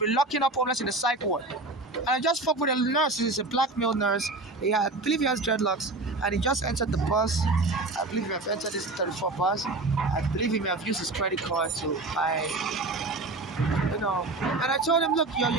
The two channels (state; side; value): quieter; left; 3.1 dB